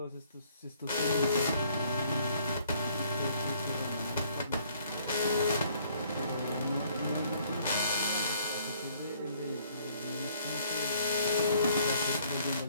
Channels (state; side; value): inverted; both; correlation -0.62